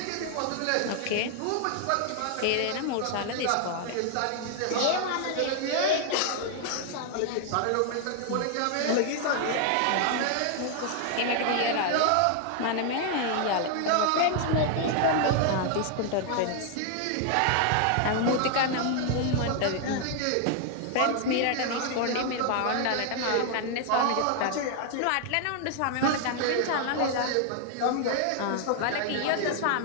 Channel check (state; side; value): different; both; correlation 0.00